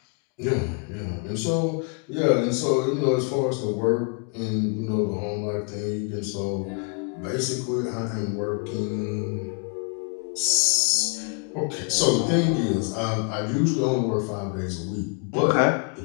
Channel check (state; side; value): quieter; right; 37.4 dB